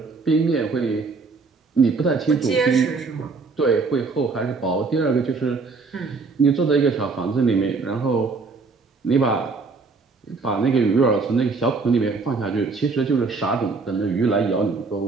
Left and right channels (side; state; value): left; quieter; 4.2 dB